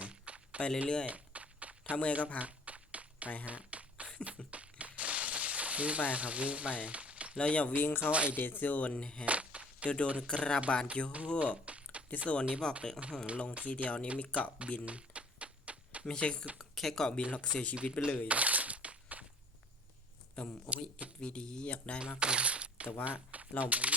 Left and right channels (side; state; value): both; normal; correlation 0.52